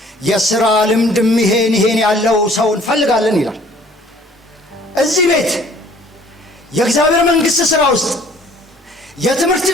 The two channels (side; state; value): both; normal; correlation 0.55